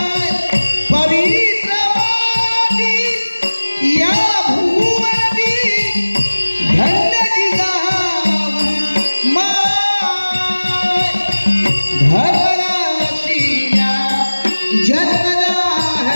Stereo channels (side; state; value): both; inverted; correlation -1.00